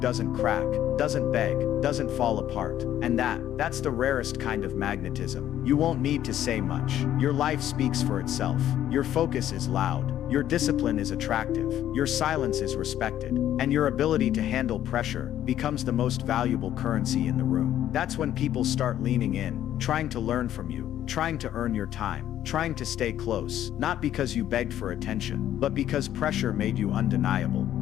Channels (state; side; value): quieter; right; 11.7 dB